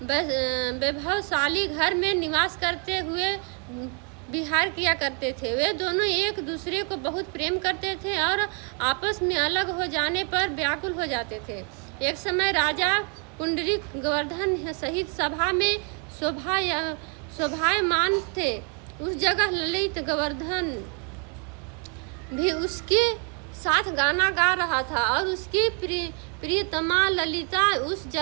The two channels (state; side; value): quieter; left; 37.3 dB